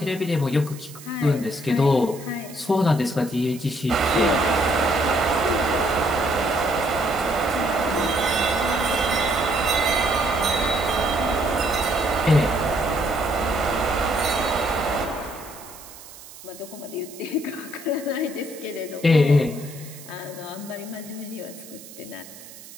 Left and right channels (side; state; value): right; noise; hiss, 17 dB below the sound